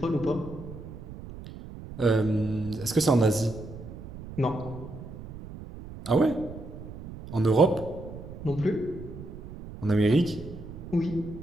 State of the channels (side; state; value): right; noise; rumble, 13 dB below the sound